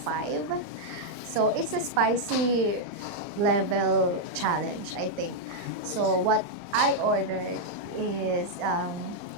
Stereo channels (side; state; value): left; late; 39 ms